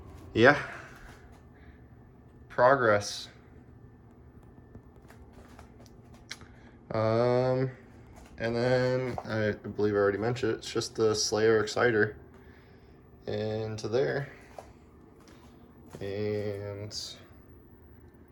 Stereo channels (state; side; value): identical; both; correlation 1.00